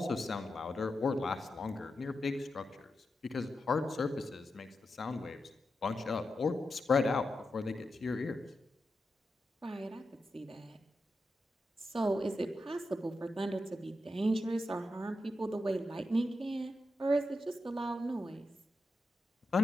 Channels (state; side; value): normal; both; correlation 0.88